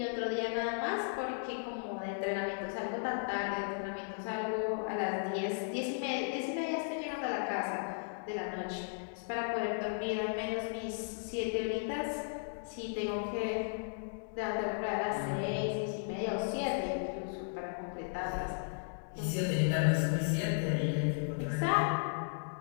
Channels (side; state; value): right; silent; digital silence